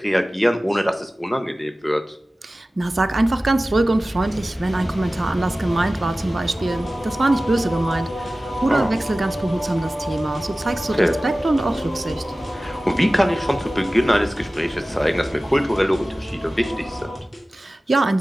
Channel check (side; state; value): both; normal; correlation 0.97